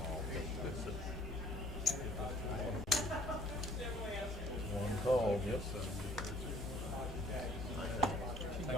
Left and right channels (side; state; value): both; normal; correlation 0.57